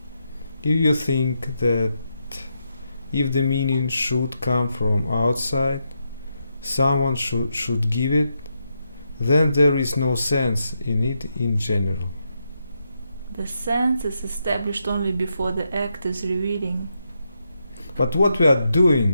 If you think that if the meaning should come from outside, someone should give it, then there is no sense in it in general. The sense is established only before the act is revealing. But what we are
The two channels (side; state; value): both; inverted; correlation -0.83